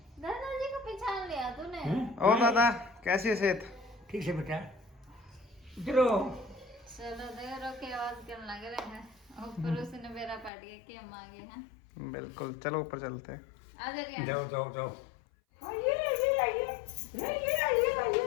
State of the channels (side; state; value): right; drops out; at 10.5 s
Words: दादाजी को पहचान लिया तूने? हैं? और दादा कैसी है सेहत? ठीक से बेटा चलो। चलो देखो के आवाज करने लग रहे हैं। ऊपर उसने मेरा पाट गया कि हम आ गए हैं। बिल्कुल, चलो ऊपर चलते हैं। आ जा रियांशी। जाओ जाओ जाओ।